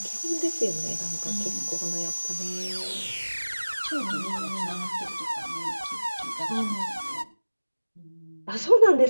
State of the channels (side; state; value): both; inverted; correlation -1.00